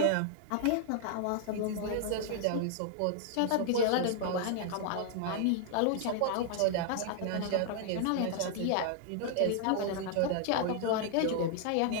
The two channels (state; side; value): different; both; correlation 0.00